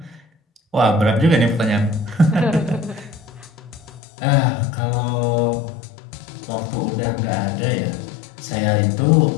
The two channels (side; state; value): right; drops out; at 4.0 s